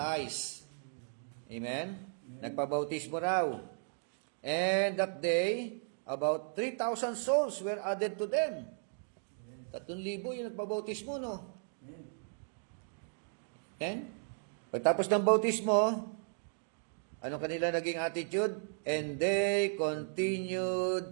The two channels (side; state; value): left; silent; digital silence